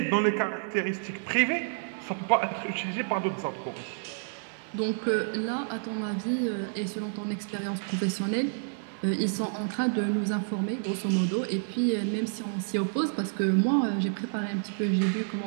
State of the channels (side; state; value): left; silent; digital silence